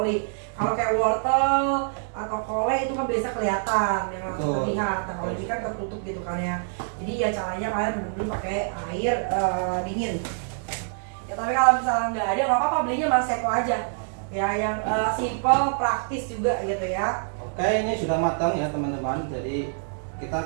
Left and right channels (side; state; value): left; silent; digital silence